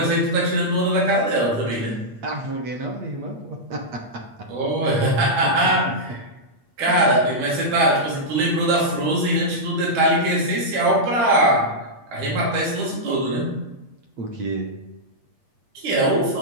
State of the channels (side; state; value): left; late; 8.5 ms